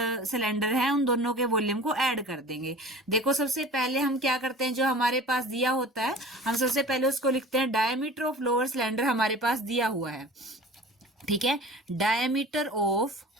सिलेंडर है उन दोनों के वॉल्यूम को ऐड कर देंगे। देखो सबसे पहले हम क्या करते हैं, जो हमारे पास दिया होता है हम सबसे पहले उसको लिखते हैं डायमीटर ऑफ लोअर सिलेंडर हमारे पास दिया हुआ है। ठीक है, डायमीटर ऑफ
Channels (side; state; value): both; normal; correlation 0.40